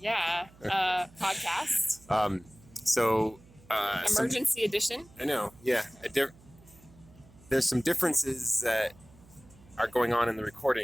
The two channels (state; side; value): noise; right; hum, 25 dB below the sound